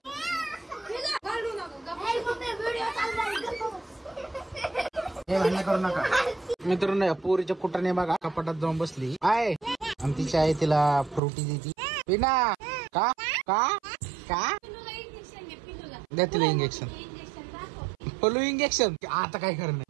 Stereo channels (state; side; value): drops out; left; at 11.2 s